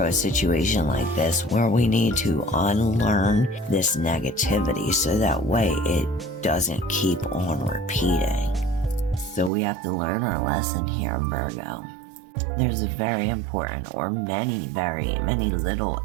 a situation like this where we need to unlearn this negativity so that way it doesn't keep on repeating. So we have to learn our lesson here, Virgo. There's a very important, or many little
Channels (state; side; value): drops out; left; at 9.5 s